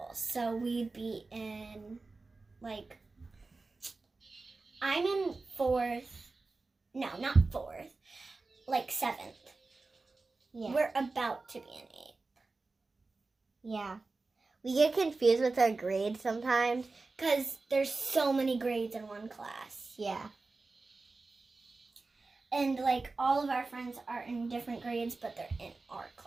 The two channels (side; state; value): left; quieter; 3.7 dB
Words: so we'd be in, like, I'm in 4th, no, not 4th, like 7th. Yeah. We're about to be in 8th. Yeah. We get confused with our grades sometimes. Because there's so many grades in one class. Yeah. And, like, all of our friends are in different grades, but they're in our